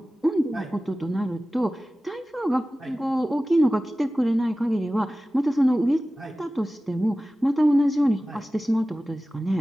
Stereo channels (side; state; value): both; normal; correlation 0.96